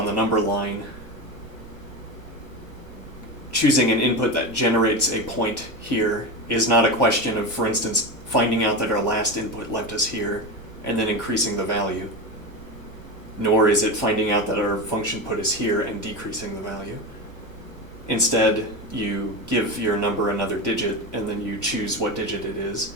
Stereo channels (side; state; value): left; late; 1.0 ms